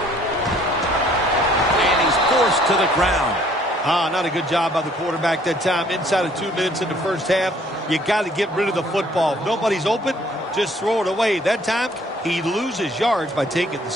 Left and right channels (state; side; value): normal; both; correlation 0.60